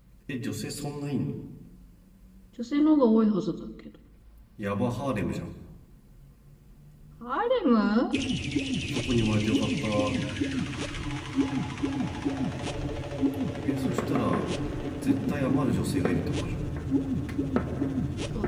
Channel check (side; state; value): both; identical; correlation 1.00